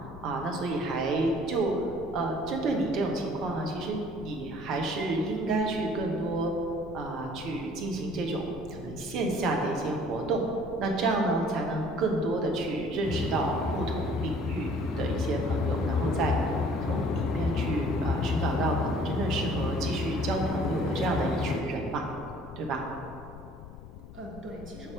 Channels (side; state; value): left; noise; rumble, 15 dB below the sound